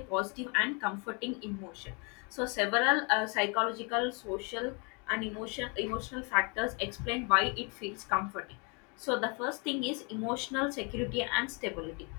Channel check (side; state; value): right; quieter; 33.4 dB